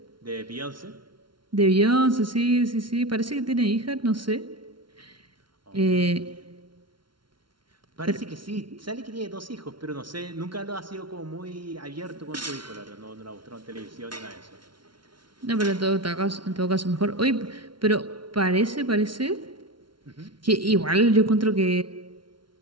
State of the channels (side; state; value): left; late; 0.73 ms